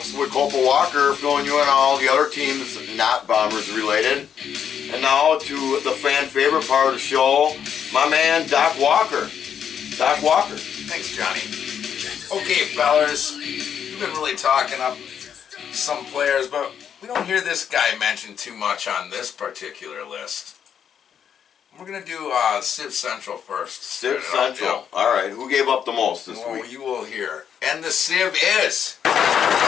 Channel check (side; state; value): right; quieter; 8.3 dB